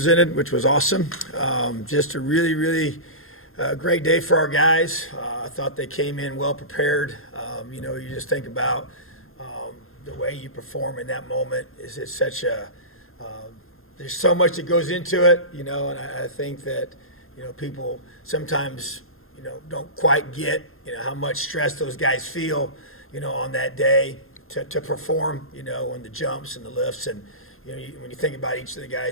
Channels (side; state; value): right; late; 0.61 ms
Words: which was awesome. Just a really, really great day for our guys. I thought they came in well prepared. You just think about the way you perform in that moment. It's such a there's so much that goes into it, and I think that people sometimes don't quite get how much stress those guys feel on that day to perform on the jumps and the lifts. And when you think about each of the